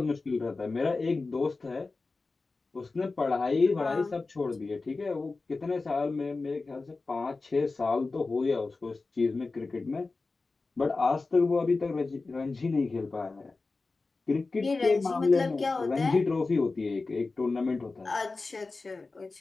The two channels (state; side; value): quieter; right; 3.8 dB